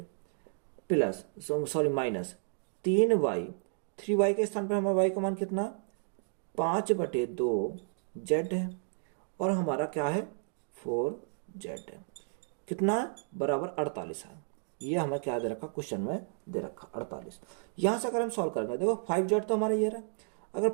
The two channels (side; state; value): left; silent; digital silence